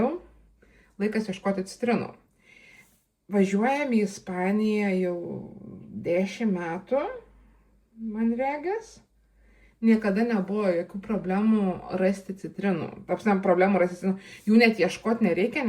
laikas ieškoti citrinų. Važiuojam į Ispaniją jau 10 metų, man regis. Niekada nebuvo jokių problemų rasti citrinų. Problemų rasti citrinų. Jų net ieškoti nereikia,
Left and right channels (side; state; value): both; identical; correlation 1.00